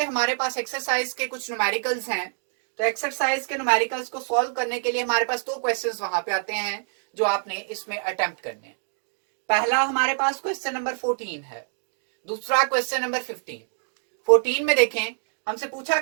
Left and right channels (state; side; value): silent; left; digital silence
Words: हमारे पास एक्सरसाइज के कुछ न्यूमेरिकल्स हैं। तो एक्सरसाइज के न्यूमेरिकल्स को सॉल्व करने के लिए हमारे पास 2 क्वेश्चंस वहां पे आते हैं जो आपने इसमें अटेम्प्ट करने हैं। पहला हमारे पास क्वेश्चन नंबर 14 है, दूसरा क्वेश्चन नंबर 15। 14 में देखें, हमसे पूछा